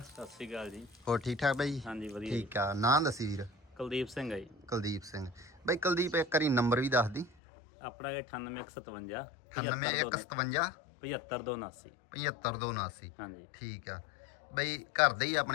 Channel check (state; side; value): drops out; right; at 7.3 s